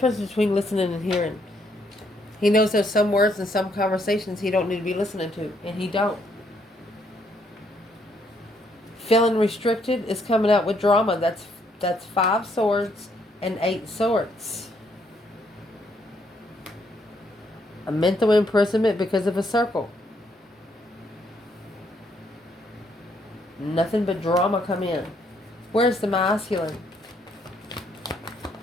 between listening and hearing. He knows there's some words and some conversations he don't need to be listening to, and he don't. Feeling restricted is coming out with drama. That's 5 swords and 8 swords. A mental imprisonment because of a circle. Nothing but drama come in. Where's the masculine?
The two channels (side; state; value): both; normal; correlation 0.72